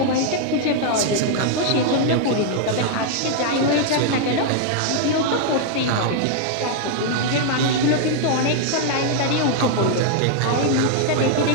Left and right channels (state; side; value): different; both; correlation 0.00